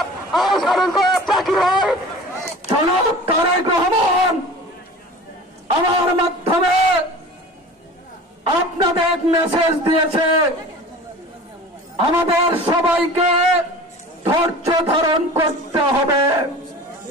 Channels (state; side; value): normal; both; correlation 0.39